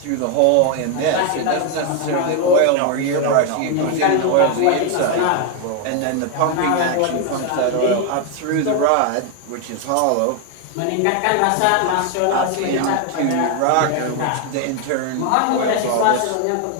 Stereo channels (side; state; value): both; different; correlation 0.01